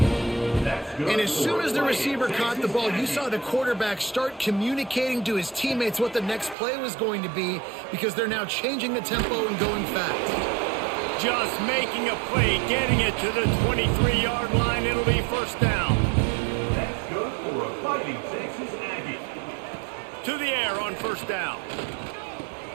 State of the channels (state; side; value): drops out; left; at 6.6 s